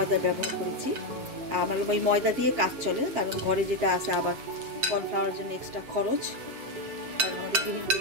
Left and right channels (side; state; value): left; late; 7.9 ms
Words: ব্যবহার করেছি। আমার ওই ময়দা দিয়ে কাজ চলে, কারণ ঘরে যেটা আছে আবার কর্নফ্লাওয়ারের জন্য এক্সট্রা খরচ। কারণ আমাদের